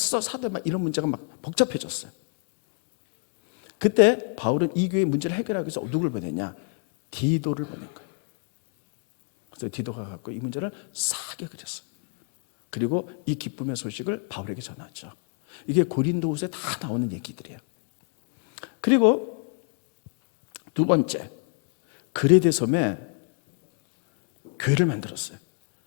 사도 막 이런 문제가 막 복잡해졌어요. 그때 바울은 이 교회의 문제를 해결하기 위해서 누굴 보냈냐? 디도를 보낸 거예요. 그래서 디도가 갖고 이 문제를 싹 해결했어요. 그리고 이 기쁨의 소식을 바울에게 전하죠. 이게 고린도후서에 다 나오는 얘기들이에요. 그리고 두 번째, 그레데 섬에 교회를 만들었어요.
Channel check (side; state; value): right; quieter; 36.2 dB